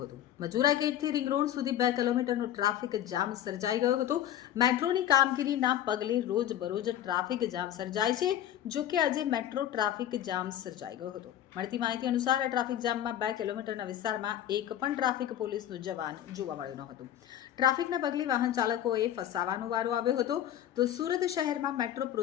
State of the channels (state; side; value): quieter; right; 11.3 dB